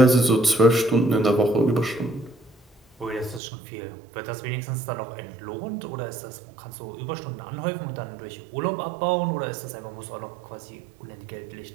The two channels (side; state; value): left; drops out; at 3.4 s